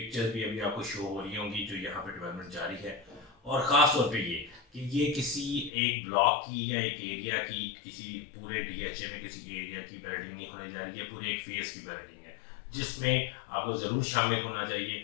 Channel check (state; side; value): drops out; right; at 5.7 s